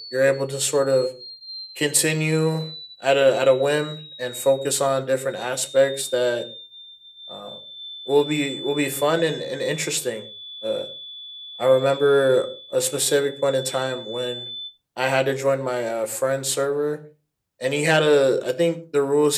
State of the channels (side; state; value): both; identical; correlation 1.00